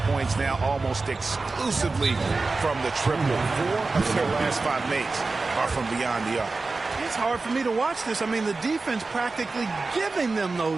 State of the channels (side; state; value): left; quieter; 3.8 dB